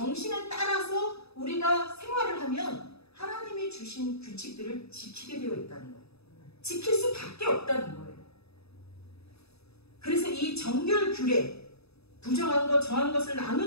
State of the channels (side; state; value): right; late; 0.79 ms